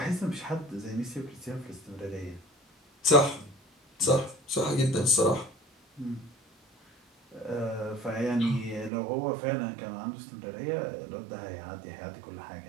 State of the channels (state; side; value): drops out; left; at 8.9 s